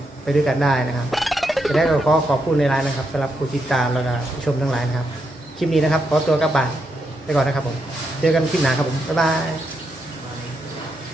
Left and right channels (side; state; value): both; normal; correlation 0.82